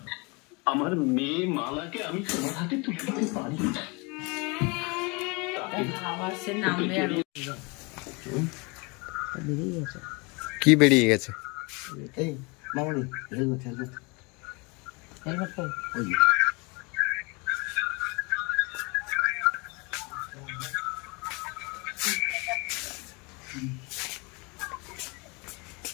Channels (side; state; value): right; quieter; 29.1 dB